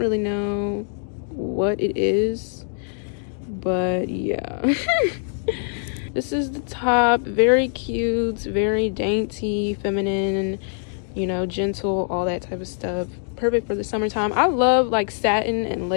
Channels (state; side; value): silent; right; digital silence